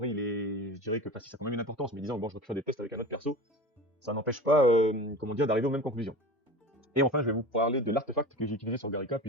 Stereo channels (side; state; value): both; normal; correlation 0.33